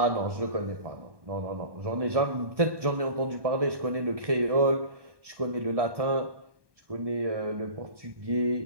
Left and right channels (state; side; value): late; left; 1.2 ms